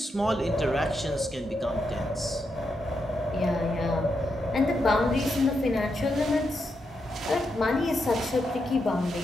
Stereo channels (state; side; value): normal; both; correlation 0.83